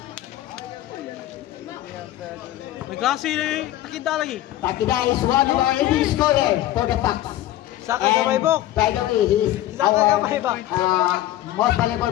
May klase na Takida lagi. Takida is one of our leading scorers for the Bucks. Saka kamay bok. By the way, he's Saka our kamay bok. most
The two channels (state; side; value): quieter; right; 14.3 dB